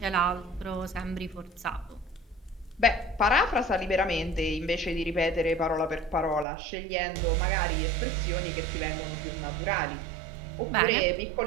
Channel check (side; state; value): left; drops out; at 6.5 s